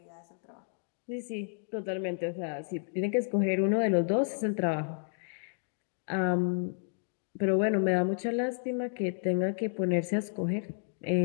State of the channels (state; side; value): silent; right; digital silence